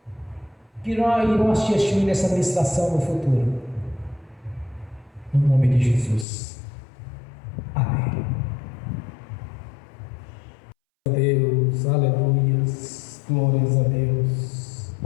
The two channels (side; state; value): right; drops out; at 6.2 s